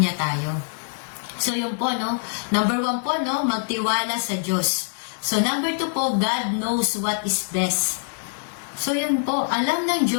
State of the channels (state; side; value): silent; right; digital silence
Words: tayo. So yun po, no, number 1 po, no, magtiwala sa Diyos. So number 2 po, God knows what is best. So yun po, alam ng